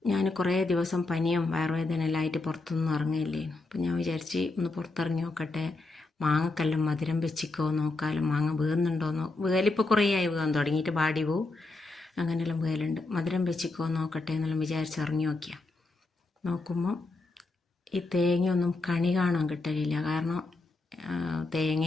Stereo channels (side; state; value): right; quieter; 3.3 dB